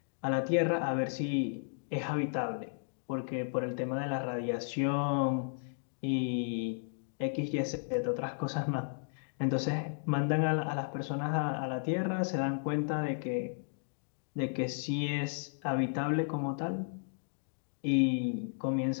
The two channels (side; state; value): right; silent; digital silence